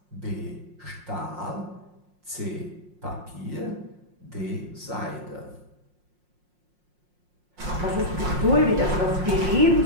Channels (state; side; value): late; left; 5.6 ms